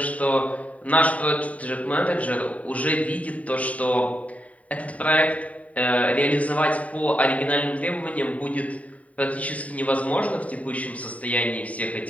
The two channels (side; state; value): right; late; 0.068 ms